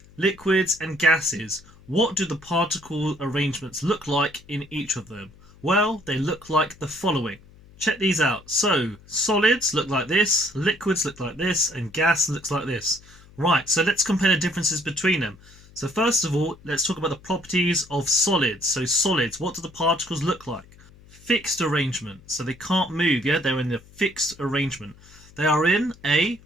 liquids and gases. What do the particle arrangements look like in each of them? Well, they look like the following. Check these out. So, solids look like this, liquids look like this, and gas looks like this. Right, so let's compare the differences between them. So first of all, let's talk about the properties of solids. So solids, what do the particles look like? Fixed arrangement. So they can't move, yeah? They're in a fixed arrangement. They are in a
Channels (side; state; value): left; noise; hum, 24 dB below the sound